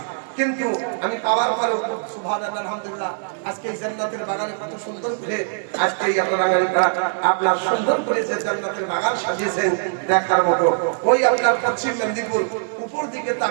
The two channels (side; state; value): left; silent; digital silence